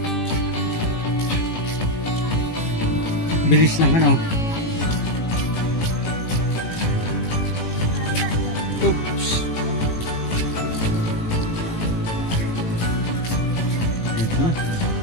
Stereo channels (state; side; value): late; right; 18 ms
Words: Bilis lang Oops. Ito na.